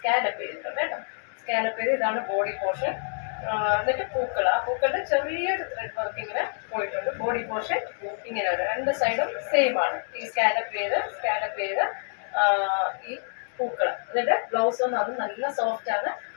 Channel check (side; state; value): right; silent; digital silence